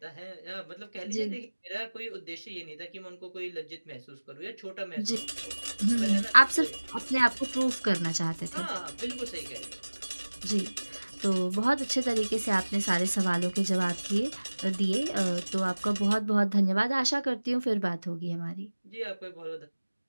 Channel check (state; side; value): inverted; both; correlation -1.00